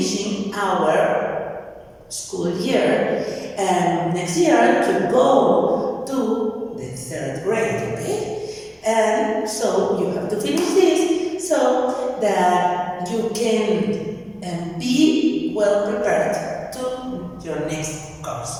our school year, and next year to go to the 3rd grade, okay? And so you have to finish this so that you can be well prepared to your next course.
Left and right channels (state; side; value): identical; both; correlation 1.00